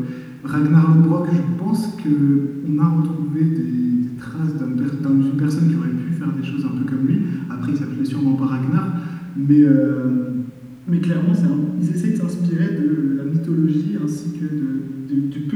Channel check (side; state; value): both; identical; correlation 1.00